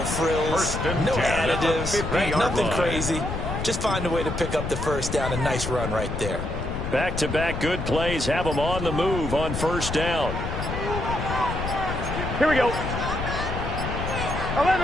no additives, right? Nothing crazy. Just find a way to pick up the 1st down. A nice run right there. Back-to-back good plays have them on the move on 1st down. Here we go.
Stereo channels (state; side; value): noise; left; rumble, 4 dB below the sound